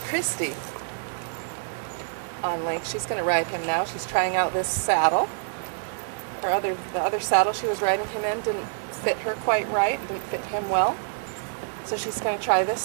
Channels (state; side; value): silent; left; 61 dB below the other